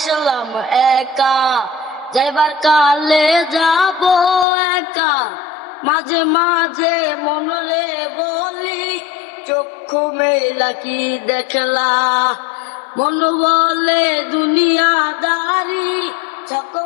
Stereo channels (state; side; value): drops out; right; at 4.5 s